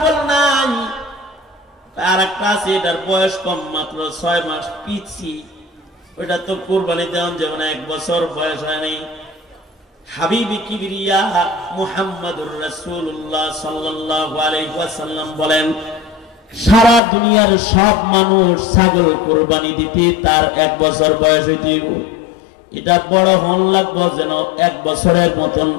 নাই? আর একটা আছে, এটার বয়স কম, মাত্র 6 মাস পিছি, ওটা তো কুরবানি দেওয়া যেমন 1 বছর বয়স হয় নাই। হাবিবি কিবরিয়া মুহাম্মাদুর রাসূলুল্লাহ সাল্লাল্লাহু আলাইহি ওয়াসাল্লাম বলেন, সারা দুনিয়ার সব মানুষ ছাগল কুরবানি দিতে তার 1 বছর বয়স হইতে হইব। এটা বড় হন লাগবো যেন 1 বছরের মতন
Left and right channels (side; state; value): right; drops out; at 17.0 s